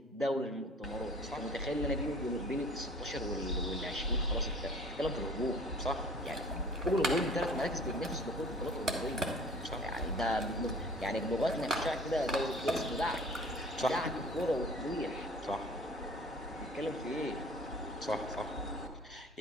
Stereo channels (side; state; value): both; normal; correlation 0.48